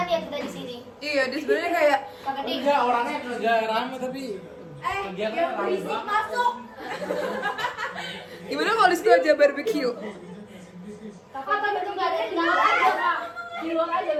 ya kita di sini. Iya, dia sebenarnya kayak Kak Ferdi. Enggak, orangnya kagak rame tapi kegiatan yang rame berisik banget. masuk. gimana kalau di situ aja barbecue? Kata betul nggak ada di luar aja, Kak. Di luar aja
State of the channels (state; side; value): identical; both; correlation 1.00